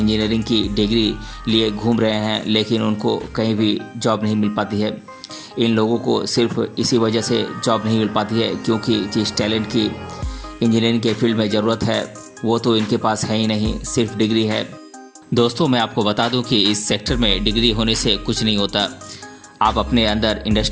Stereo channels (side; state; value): both; identical; correlation 1.00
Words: की डिग्री लिए घूम रहे हैं, लेकिन उनको कहीं भी जॉब नहीं मिल पाती है। इन लोगों को सिर्फ इसी वजह से जॉब नहीं मिल पाती है क्योंकि जिस टैलेंट की इंजीनियरिंग के फील्ड में ज़रूरत है वो तो इनके पास है ही नहीं, सिर्फ डिग्री है। दोस्तों, मैं आपको बता दूं कि इस सेक्टर में डिग्री होने से कुछ नहीं होता। आप अपने अंदर